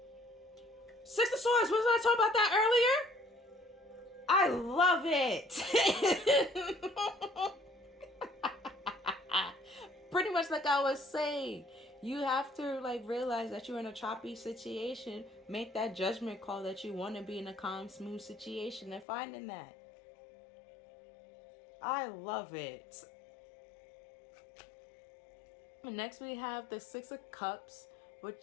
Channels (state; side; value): drops out; right; at 19.1 s